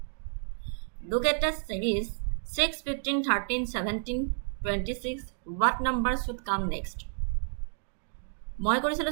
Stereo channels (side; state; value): left; silent; digital silence